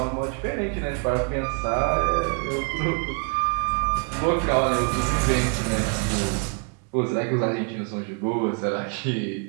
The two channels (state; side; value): quieter; left; 36.2 dB